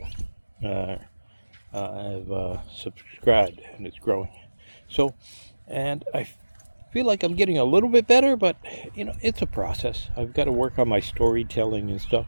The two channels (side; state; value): both; inverted; correlation -1.00